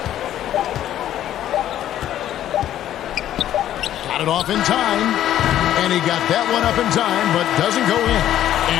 Got it off in time. And he got that one up in time, but doesn't go in.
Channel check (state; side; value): quieter; right; 11.9 dB